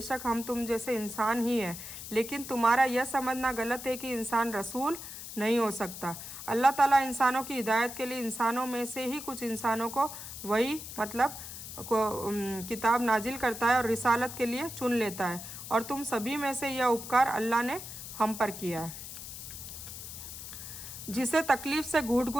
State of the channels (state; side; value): noise; left; hiss, 10 dB below the sound